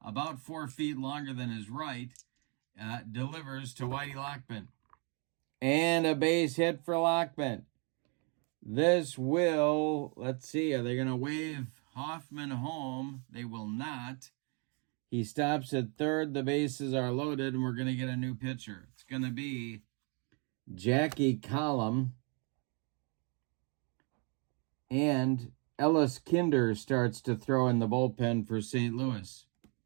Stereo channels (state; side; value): quieter; left; 35.3 dB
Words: about 4 feet longer than his right, delivers to Whitey Lockman. And a base hit for Lockman. This will, let's see, are they going to wave Hoffman home? They will not. He stops at third. The bases are loaded, and we're going to get a new pitcher. It's going to be Jackie Collum. And Ellis Kinder starts to throw in the bullpen for St. Louis.